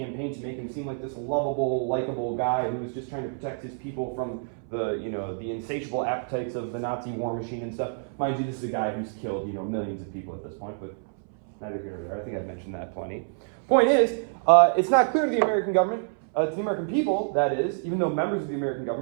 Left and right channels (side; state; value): left; silent; 60 dB below the other